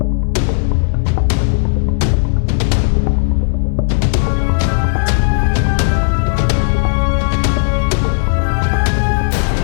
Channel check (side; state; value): right; silent; digital silence